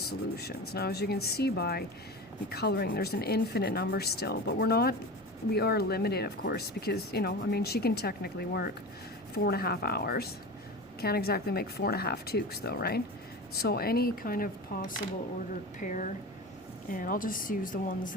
Now, as you can see by the coloring, there's an infinite number still, but we are limited, of course, because, you know, I mean, she can technically work 4.5 hours. Can't exactly make 4.5 toques though, right? So any kind of possible ordered pair, and I'll just use the ones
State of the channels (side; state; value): both; normal; correlation 0.29